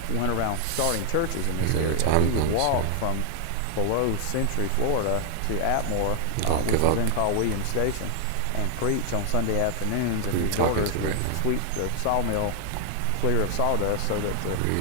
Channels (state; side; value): different; both; correlation 0.00